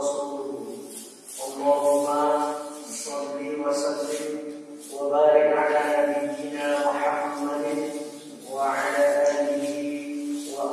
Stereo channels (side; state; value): both; identical; correlation 1.00